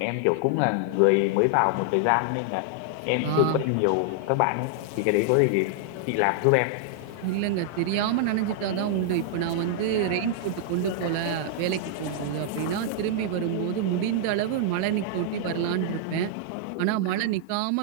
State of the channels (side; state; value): both; different; correlation -0.01